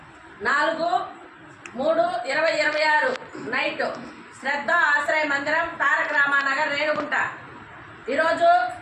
4/3/2026 నైట్ శ్రద్ధ ఆశ్రయ మందిరం తారక రామానగర్ రేణుగుంట. ఈరోజు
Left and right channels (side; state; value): both; identical; correlation 1.00